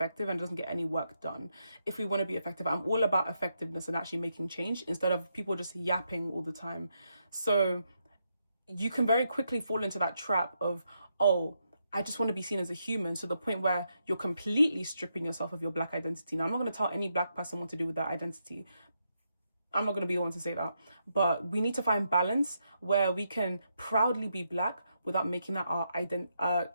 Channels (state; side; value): inverted; both; correlation -0.81